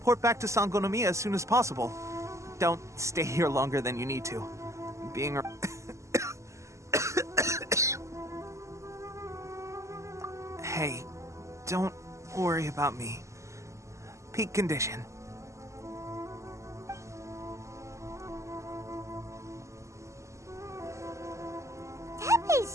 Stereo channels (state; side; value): late; left; 0.14 ms